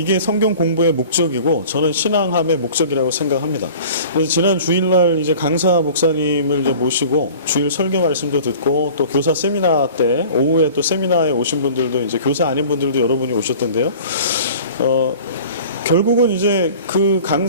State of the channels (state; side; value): inverted; both; correlation -0.44